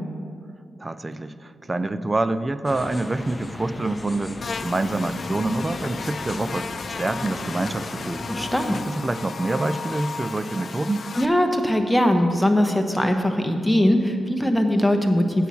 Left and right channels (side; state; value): both; normal; correlation 0.94